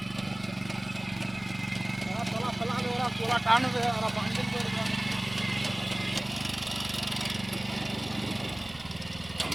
ওরা তোলা ফেলাবে, ওরা তোলা টানবে, ওরা বান্ডিল করবে।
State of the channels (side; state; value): right; noise; rumble, 20 dB below the sound